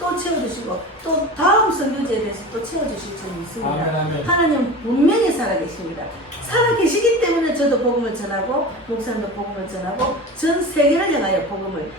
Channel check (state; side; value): normal; both; correlation 0.32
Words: 채워주시고 또 다음 선교지에 대해서 또 채워주실 줄이 있습니다. 아멘, 아멘. 하나님 분명히 살아계십니다. 살아계시기 때문에 저도 복음을 전하고 목사님도 복음을 전하고 전 세계를 향하여 복음을